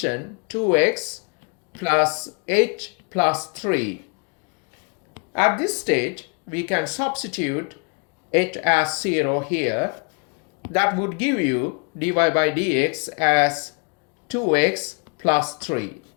2x plus h plus 3. At this stage, we can substitute h as 0 here. That would give you dy by dx as 2x plus 3.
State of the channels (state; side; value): quieter; right; 35.0 dB